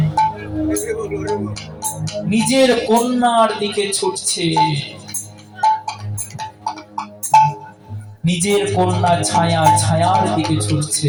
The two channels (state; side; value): identical; both; correlation 1.00